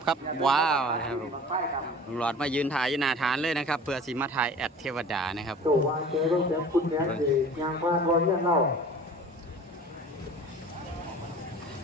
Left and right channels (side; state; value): both; normal; correlation 0.43